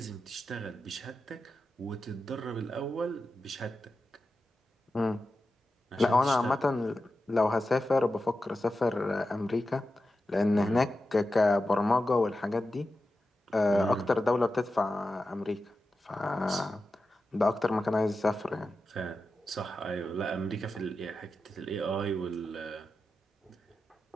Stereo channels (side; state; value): both; normal; correlation 0.91